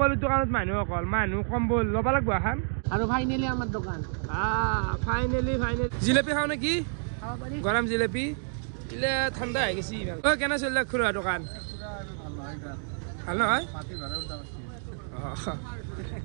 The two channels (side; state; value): left; silent; 59 dB below the other